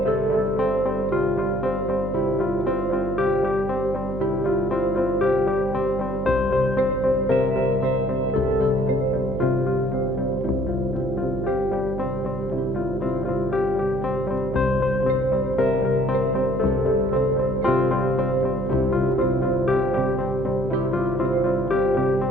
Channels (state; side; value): noise; right; hum, 7 dB below the sound